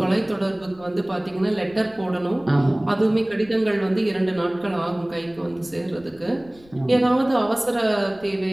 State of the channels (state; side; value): noise; left; rumble, 25 dB below the sound